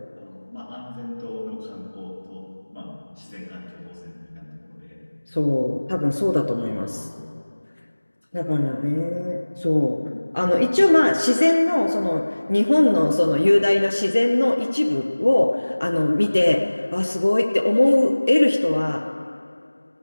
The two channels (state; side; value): inverted; both; correlation -1.00